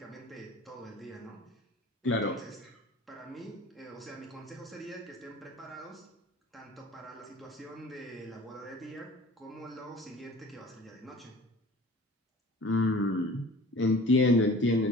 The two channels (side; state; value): both; normal; correlation 0.44